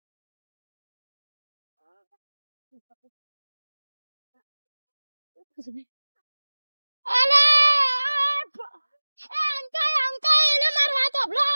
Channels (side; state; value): both; inverted; correlation -1.00